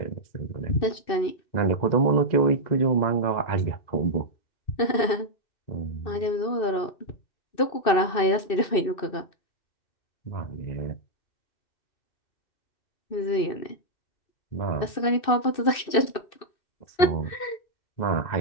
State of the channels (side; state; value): right; late; 2.6 ms